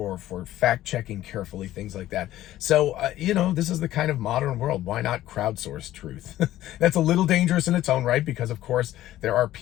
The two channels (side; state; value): right; quieter; 14.1 dB